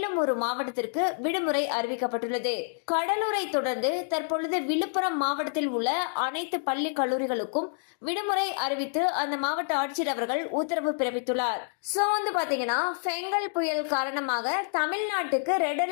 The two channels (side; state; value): right; silent; digital silence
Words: ஒரு மாவட்டத்திற்கு விடுமுறை அறிவிக்கப்பட்டுள்ளது. கடலூரை தொடர்ந்து தற்பொழுது விழுப்புரம் மாவட்டத்தில் உள்ள அனைத்து பள்ளி கல்லூரிகளுக்கும் விடுமுறை அறிவித்து அந்த மாவட்ட ஆட்சியர் அவர்கள் உத்தரவு பிறப்பித்துள்ளார். சோ பாத்தீங்கன்னா பெங்கல் புயல் காரணமாக தமிழ்நாட்டுக்கு ரெட்